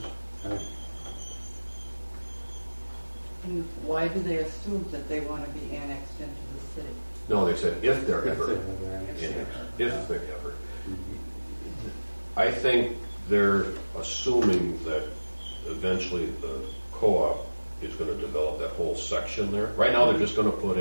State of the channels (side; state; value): both; inverted; correlation -1.00